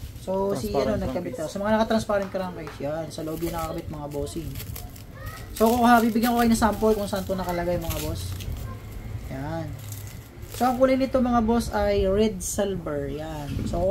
So si ano nagkabit to. Sa mga naka-transparent crank case, yan, sa loob yung nakakabit mga bossing. So kung bibigyan ko kayo ng sample kung saan to nakalagay mga boss. Yan. So ang kulay nito mga boss ay red silver, yan. So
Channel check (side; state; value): both; identical; correlation 1.00